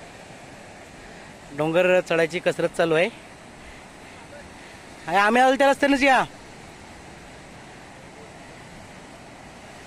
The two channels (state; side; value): identical; both; correlation 1.00